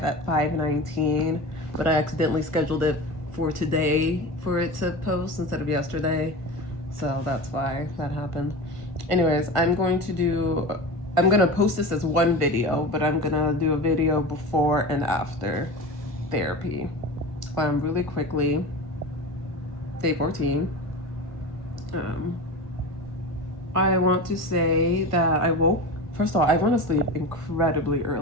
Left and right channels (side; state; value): left; late; 1.5 ms